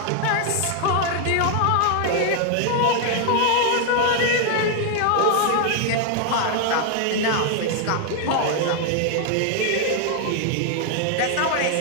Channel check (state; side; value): different; both; correlation 0.00